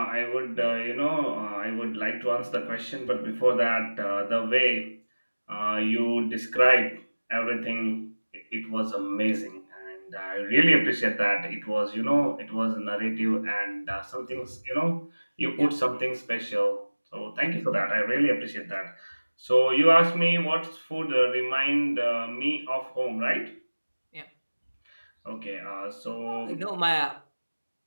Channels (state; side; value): inverted; both; correlation -1.00